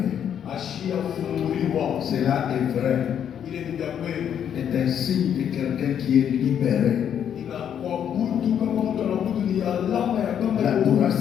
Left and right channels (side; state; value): right; quieter; 9.0 dB